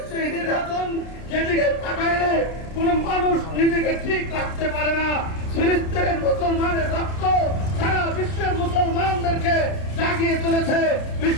সেই নির্যাতন, যেদিকে তাকাইলে কোন মানুষ নিজেকে ঠিক রাখতে পারে না। ফিলিস্তিনের মুসলমানের রক্ত সারা বিশ্বের মুসলমানদেরকে জাগিয়ে তুলেছে।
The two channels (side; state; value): right; late; 30 ms